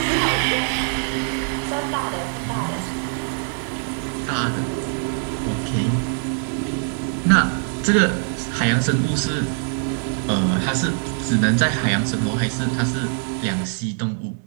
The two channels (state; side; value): silent; left; 56 dB below the other